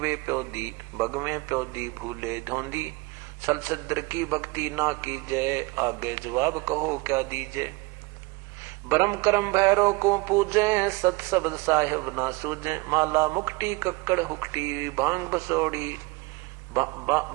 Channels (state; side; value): quieter; left; 24.7 dB